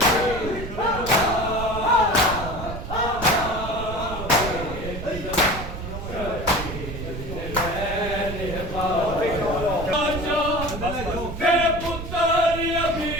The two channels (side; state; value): right; noise; rumble, 8 dB below the sound